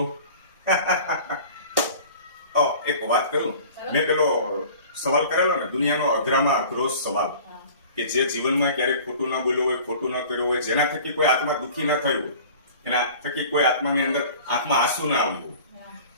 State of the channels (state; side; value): inverted; both; correlation -0.44